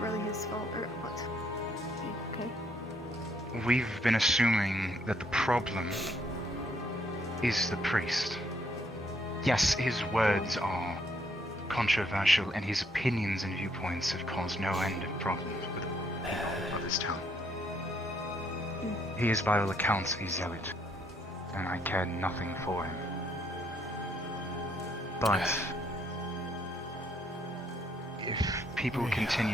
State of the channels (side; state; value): both; normal; correlation 0.70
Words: really his fault, or what? Okay. We've been assuming that the problem is the priest. Yes, his words are controversial, and his opinions and viewpoints have caused no end of problems with the people of this town. He is, by all accounts, a zealot, and I care nothing for him. But if people